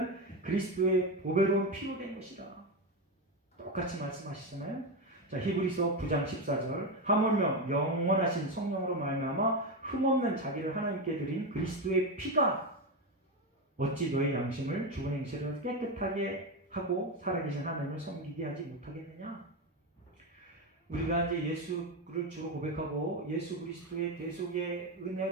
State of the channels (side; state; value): both; normal; correlation 0.13